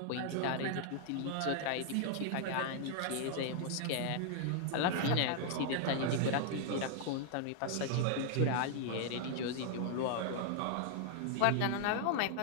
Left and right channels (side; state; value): both; different; correlation -0.01